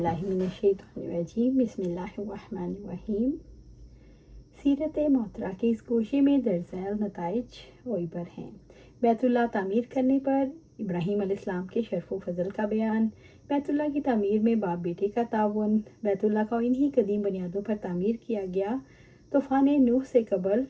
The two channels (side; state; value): both; identical; correlation 1.00